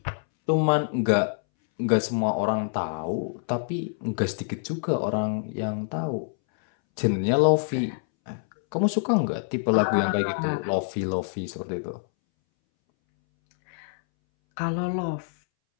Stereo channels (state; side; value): silent; right; 61 dB below the other